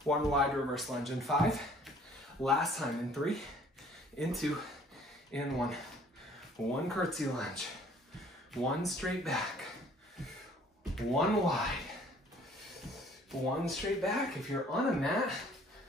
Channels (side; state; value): both; normal; correlation 0.56